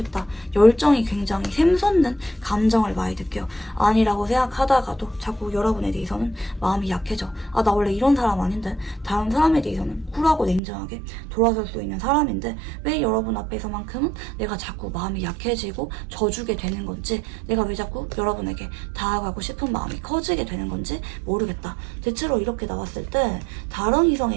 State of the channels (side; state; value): left; drops out; at 10.6 s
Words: 열정이 굉장히 샘솟는 감정을 많이 느껴요. 아니라고 생각하다가도 자꾸 여러분에 대해서는 마음이 약해져. 아, 나 원래 이런 사람 아닌데 다른 사람에 대해서는 쿨하고 냉정하게 돌아설 수 있는 사람인데 왜 여러분 앞에서만큼은 내가 자꾸 마음이 약해지고 져주게 되는 건지 내가 왜 자꾸 여러분에게 다가가고 싶은 마음이 커지게 되는 건지 모르겠다. 대체로 이렇게 나왔을 때 다른